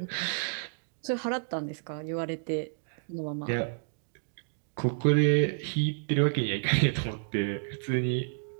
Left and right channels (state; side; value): silent; left; digital silence